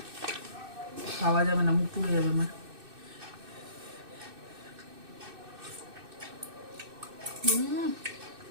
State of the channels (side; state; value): left; late; 2.6 ms